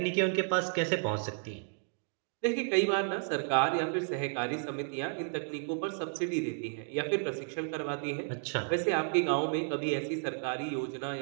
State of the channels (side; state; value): left; silent; 56 dB below the other